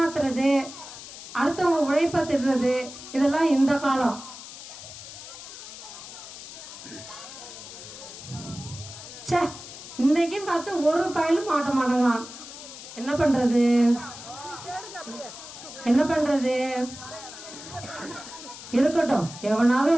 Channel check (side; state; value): left; noise; hiss, 13 dB below the sound